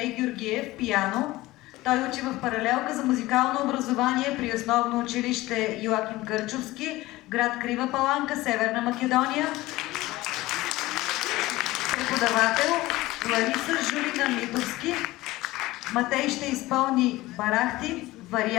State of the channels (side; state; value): right; quieter; 18.5 dB